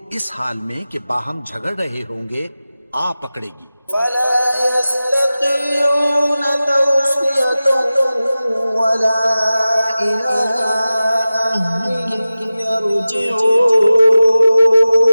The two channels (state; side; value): inverted; both; correlation -0.95